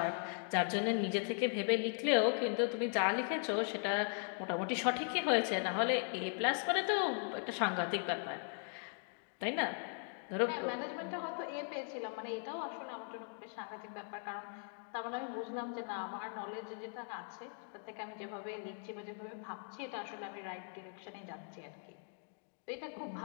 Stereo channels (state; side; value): silent; right; 52 dB below the other